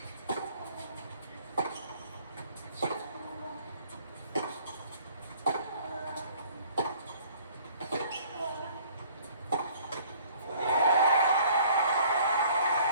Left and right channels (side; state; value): both; inverted; correlation -0.55